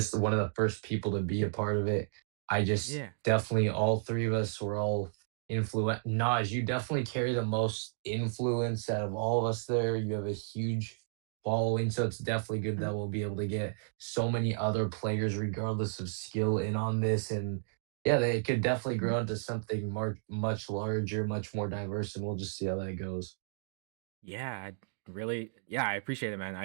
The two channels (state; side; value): silent; left; digital silence